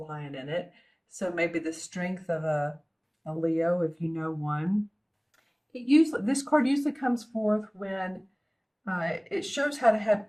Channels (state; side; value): identical; both; correlation 1.00